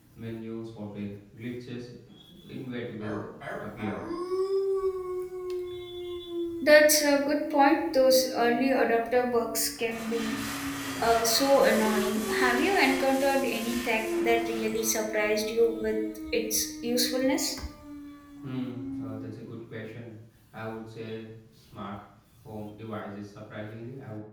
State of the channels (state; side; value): identical; both; correlation 1.00